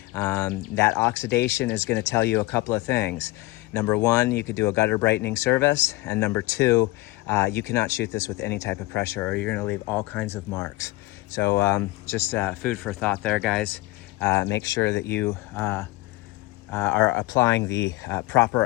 That oxidation is going to tell you a couple of things. Number one, you could do a gutter brightening service. And number two, you cannot shoot this with any type of pressure, or you're going to leave all kinds of marks. So just food for thought there, guys. Make sure that you are applying the proper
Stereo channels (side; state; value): right; quieter; 20.5 dB